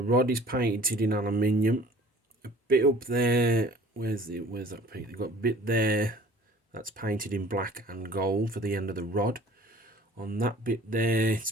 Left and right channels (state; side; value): normal; both; correlation 0.50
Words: rod is painted in aluminium. A bit up there, where's that paint? They've got a bit there that's painted in black and gold for the end of the rod. On that bit there, it's